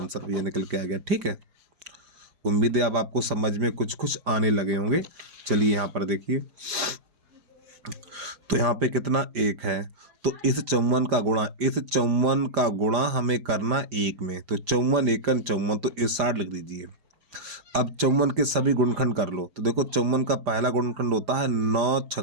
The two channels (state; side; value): late; left; 5.0 ms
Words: ये निकल के आ गया। ठीक है, उम्मीद है अब आपको समझ में कुछ कुछ आने लगे होंगे। चलिए यहाँ पर देखिए, तो यहाँ पे कितना 1 है, तो इस 54 का गुणा हमें करना 1 में, तो 54 × 1 = 54, तो इस 60 लिख दीजिए। अब 54 के सभी गुणनखंड कर लो, तो देखो 54 का पहला गुणनखंड होता है 9 ×